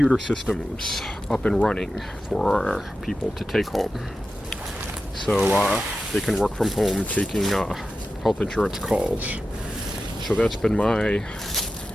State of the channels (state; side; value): normal; both; correlation 0.92